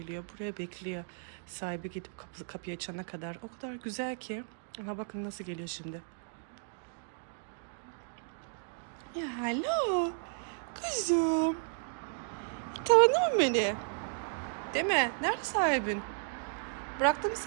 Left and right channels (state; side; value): silent; left; digital silence